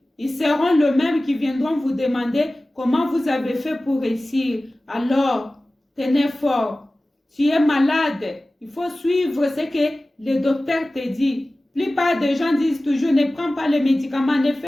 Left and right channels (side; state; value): both; normal; correlation 0.97